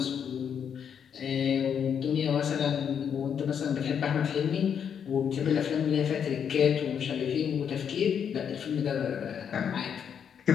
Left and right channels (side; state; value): right; quieter; 7.8 dB